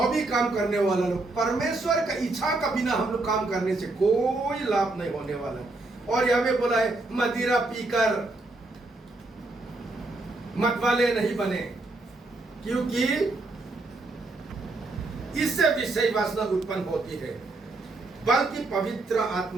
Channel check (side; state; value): left; quieter; 3.1 dB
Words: भी काम करने वाला लोग, परमेश्वर का इच्छा का बिना हम लोग काम करने से कोई लाभ नहीं होने वाला। और यहाँ पे बोला है मदिरा पीकर मतवाले नहीं बने, क्योंकि इससे विषय वासना उत्पन्न होती है, बल्कि पवित्र